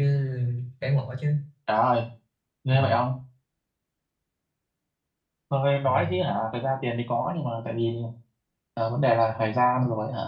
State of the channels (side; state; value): both; identical; correlation 1.00